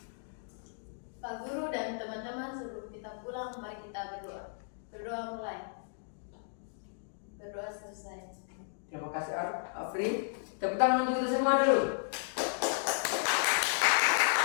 Pak Guru dan teman-teman, sebelum kita pulang, mari kita berdoa. Berdoa mulai. Berdoa selesai. Terima kasih Afri. Tepuk tangan untuk kita semua dulu.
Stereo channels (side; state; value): right; silent; digital silence